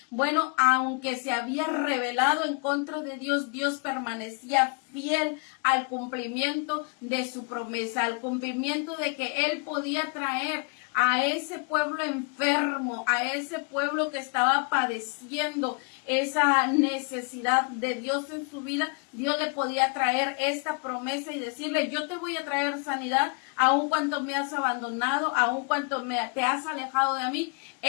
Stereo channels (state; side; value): quieter; right; 36.2 dB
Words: Bueno, aunque se había rebelado en contra de Dios, Dios permanecía fiel al cumplimiento de su promesa, al cumplimiento de que él podía traer a ese pueblo enfermo, a ese pueblo que estaba padeciendo esa necesidad de Dios en su vida. Dios le podía traer esta promesa y decirle: yo te voy a traer sanidad, aun cuando me has abandonado, aun cuando te has alejado de mí.